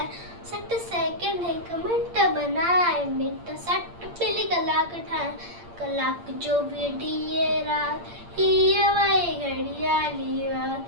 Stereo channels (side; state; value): left; late; 8.7 ms